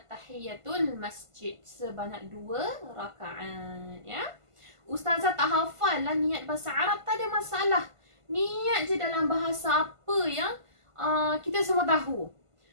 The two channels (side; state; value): left; late; 1.5 ms